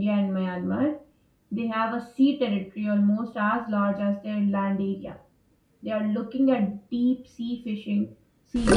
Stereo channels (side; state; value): both; identical; correlation 1.00